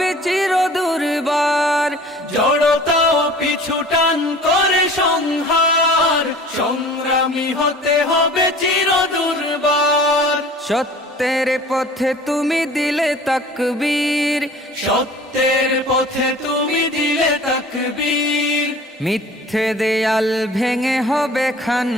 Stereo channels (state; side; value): normal; both; correlation 0.45